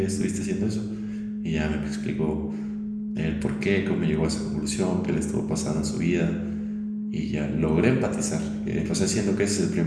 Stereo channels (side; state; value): both; identical; correlation 1.00